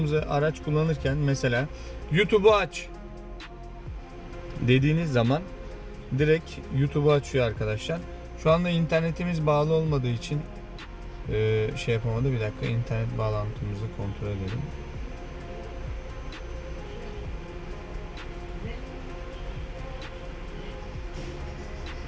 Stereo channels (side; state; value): both; identical; correlation 1.00